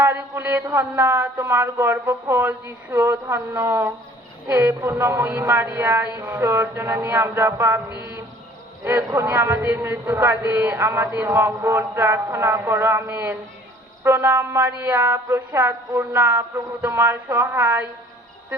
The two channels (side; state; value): both; normal; correlation 0.53